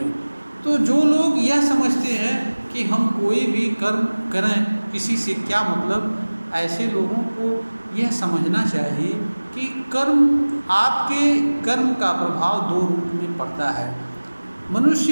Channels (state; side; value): inverted; both; correlation -1.00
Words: तो जो लोग यह समझते हैं कि हम कोई भी कर्म करें किसी से क्या मतलब, ऐसे लोगों को यह समझना चाहिए कि आपके कर्म का प्रभाव दो रूप में पड़ता है। मनुष्य